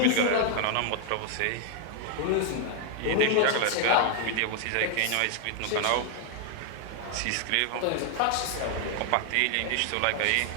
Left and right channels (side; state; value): both; different; correlation 0.00